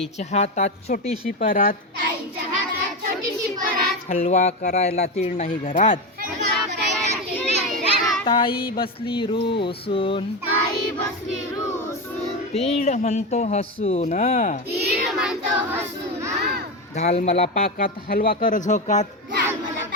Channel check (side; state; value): both; normal; correlation 0.16